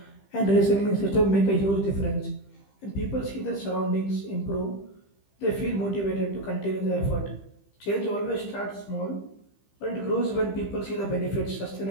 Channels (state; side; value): late; right; 15 ms